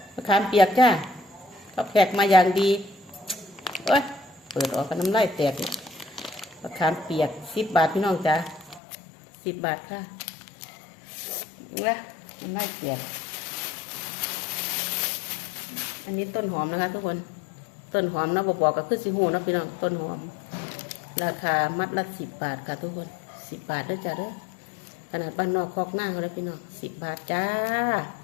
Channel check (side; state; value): right; drops out; at 8.8 s